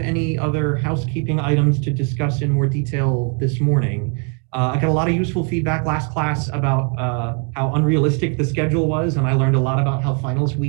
other housekeeping items to discuss in more detail this morning. I got a lot of useful feedback last class about how unrealistic the schedule was, and I learned a lot about how finals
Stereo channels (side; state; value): left; quieter; 39.0 dB